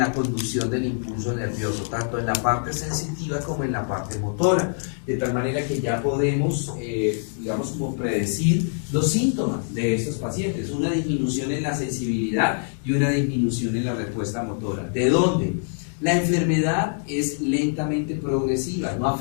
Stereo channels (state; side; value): silent; right; digital silence